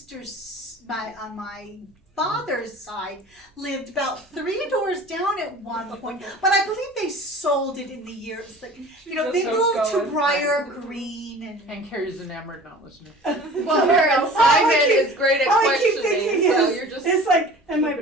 on my father's side, lived about 3 doors down at one point. But I believe they sold it in the years. Like, you know, they Just moved to going. Briar Green And Carrie's enamored, not listening. Well, Simon is great at all I keep questioning, thinking so is, you're just. it's like, and my keeping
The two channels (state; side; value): normal; both; correlation 0.43